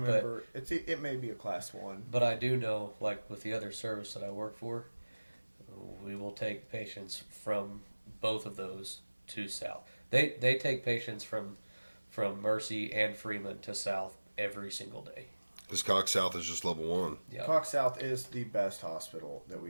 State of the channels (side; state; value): both; inverted; correlation -1.00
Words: remember. It may be a class 1. But I do know, like with the other service that I work for, we will take patients from both of those to South. They take patients from Mercy and Freeman to South every single day. This Cox South is just level 1. Yeah. Cox South is the best hospital that